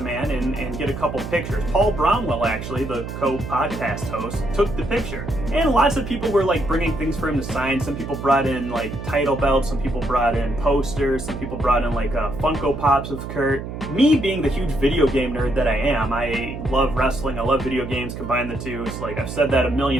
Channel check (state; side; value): noise; right; hum, 8 dB below the sound